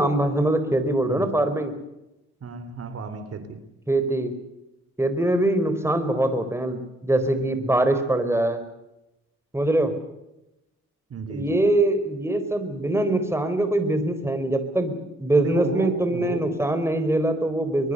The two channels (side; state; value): both; normal; correlation 0.70